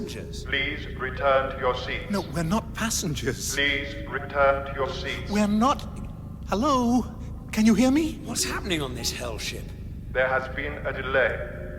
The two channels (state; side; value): identical; both; correlation 1.00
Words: Please return to your seats. No, we're not passengers. Please return to your seats. We're not... Hello? Can you hear me? What's happening on this hell ship? There has been a delay.